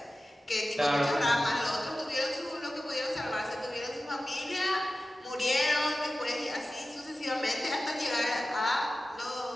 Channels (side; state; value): both; normal; correlation 0.94